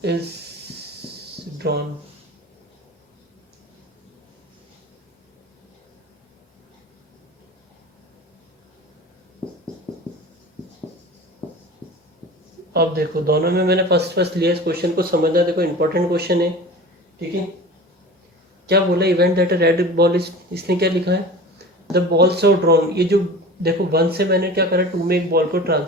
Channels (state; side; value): normal; both; correlation 0.37